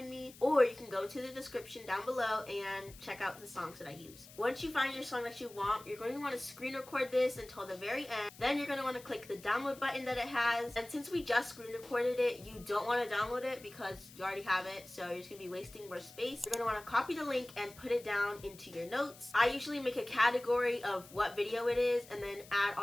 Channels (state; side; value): noise; left; hiss, 20 dB below the sound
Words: me. Or you can go to the description down below and check out the songs that I use. Once you find your song that you want, you're going to want to screen record this until the very end. Then you're going to want to click the download button that it has. And since we just screen recorded it, you don't want to download it because you already have it, so you're just going to be wasting more space. You're going to want to copy the link and put it down into your notes. I usually make a category of what video it is and then add